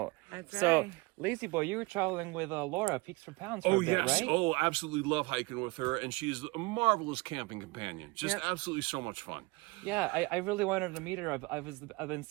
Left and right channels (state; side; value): quieter; left; 24.5 dB